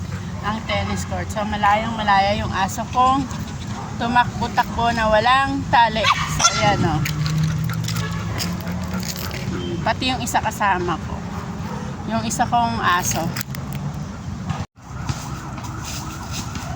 ang tennis court. So, malayong malaya yung aso kong tumakbo-takbo na walang tali. So, ayan o. Pati yung isa kasama ko. Yung isa kong aso.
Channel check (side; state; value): both; identical; correlation 1.00